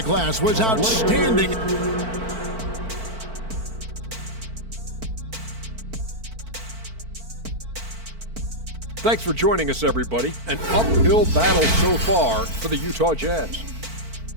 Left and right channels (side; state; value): left; late; 4.5 ms